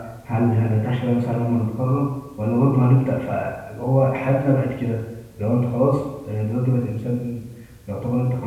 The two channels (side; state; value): both; identical; correlation 1.00